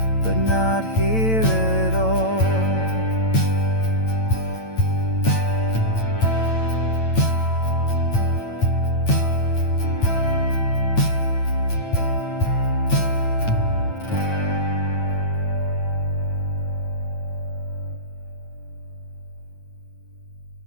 but not here at all.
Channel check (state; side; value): late; right; 9.0 ms